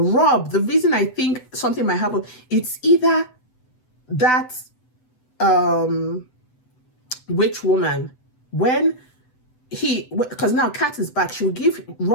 the reason I think something might happen, it's either that witch woman, because now Kat is back, she will give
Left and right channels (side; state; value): right; late; 7.9 ms